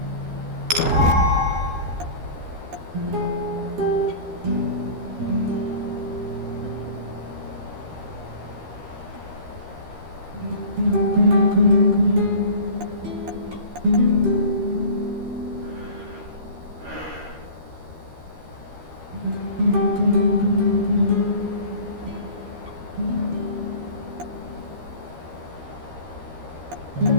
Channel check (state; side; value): late; left; 13 ms